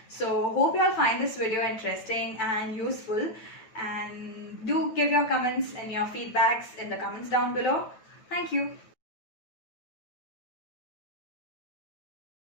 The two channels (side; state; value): right; late; 9.1 ms